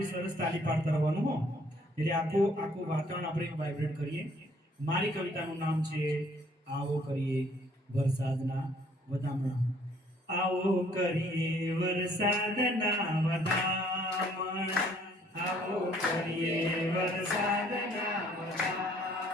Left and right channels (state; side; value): normal; both; correlation 0.61